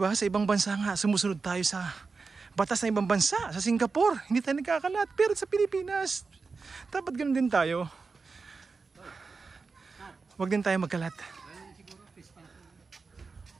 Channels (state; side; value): quieter; left; 4.5 dB